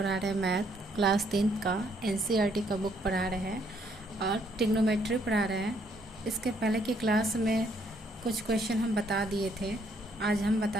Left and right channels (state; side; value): normal; both; correlation 0.69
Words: रहे हैं मैथ क्लास 10 का एनसीईआरटी का बुक पढ़ा रहे हैं और ट्रिग्नोमेट्री पढ़ा रहे हैं। इसके पहले की क्लास में कुछ क्वेश्चन हम बता दिए थे, आज हम